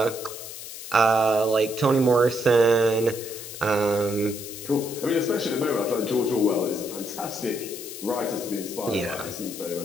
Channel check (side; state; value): left; noise; hiss, 11 dB below the sound